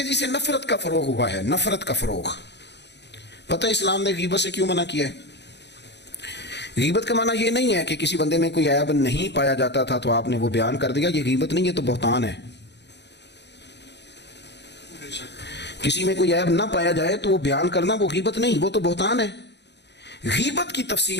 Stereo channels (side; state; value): right; late; 0.50 ms